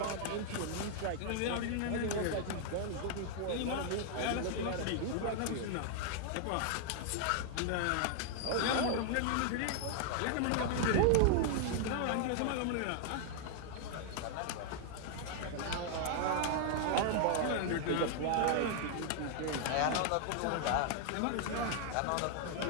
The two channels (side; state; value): both; different; correlation 0.00